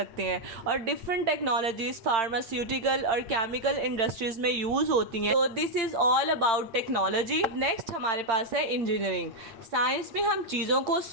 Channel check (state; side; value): late; left; 8.8 ms